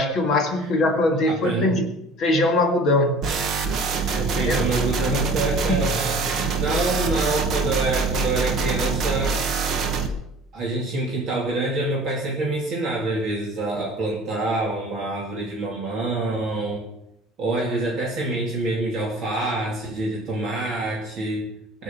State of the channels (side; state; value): both; normal; correlation 0.46